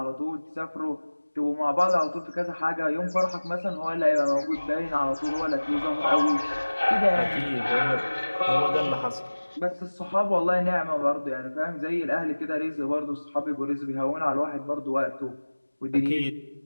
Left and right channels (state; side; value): inverted; both; correlation -1.00